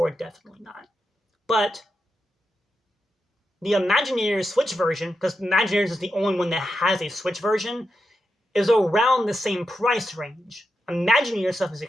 definitely not. But the Imagineers Switch version, because Imagineers is the only one that has a Switch version, is around the same price range. Imagineers stuff is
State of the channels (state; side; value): normal; both; correlation 0.87